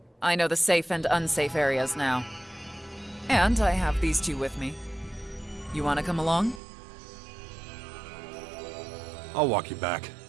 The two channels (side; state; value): left; drops out; at 6.6 s